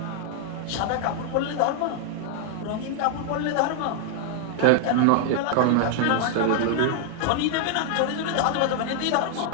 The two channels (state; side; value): different; both; correlation 0.00